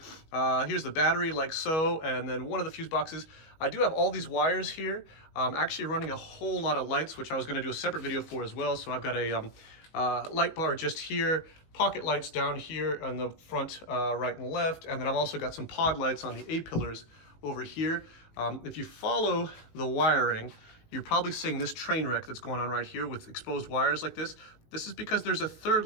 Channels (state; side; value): late; right; 19 ms